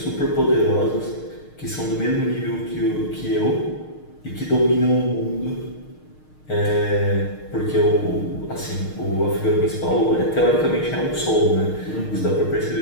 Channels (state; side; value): late; right; 6.5 ms